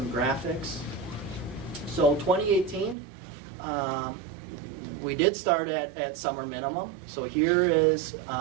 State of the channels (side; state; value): left; drops out; at 3.0 s